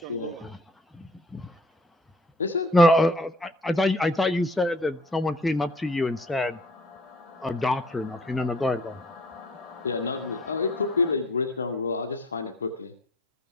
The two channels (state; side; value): normal; both; correlation 0.52